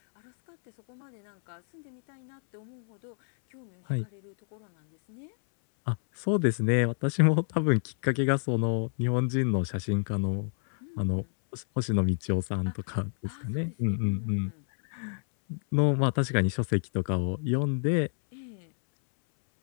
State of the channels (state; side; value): silent; right; 59 dB below the other